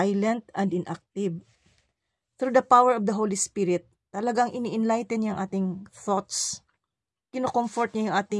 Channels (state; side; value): identical; both; correlation 1.00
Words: and inactive. Through the power of the Holy Spirit, talagang ini-enlighten niya ang ating thoughts. Kino-comfort niya yung